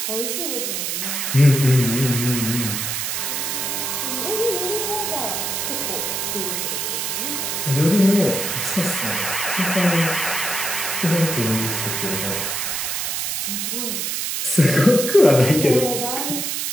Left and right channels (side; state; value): right; noise; hiss, 1 dB below the sound